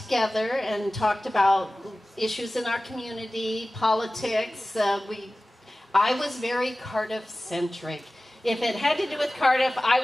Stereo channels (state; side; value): normal; both; correlation 0.97